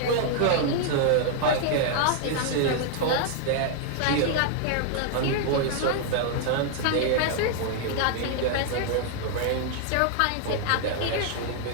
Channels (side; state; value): both; different; correlation 0.00